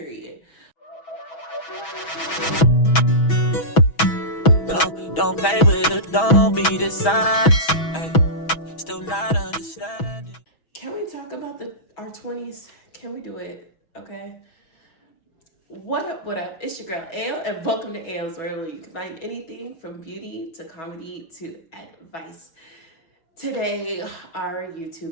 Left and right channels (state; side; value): late; right; 6.2 ms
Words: Don't play with it, don't be dishonest. Still not understanding. Can we talk about our 20s? Can we do it? Okay. What up, what up? It's your girl Ale, and welcome to Ale's World, where you can find anything from beauty to comedy to advice. Today, our